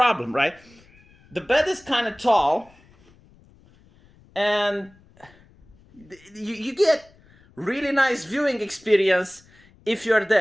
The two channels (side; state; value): left; noise; rumble, 29 dB below the sound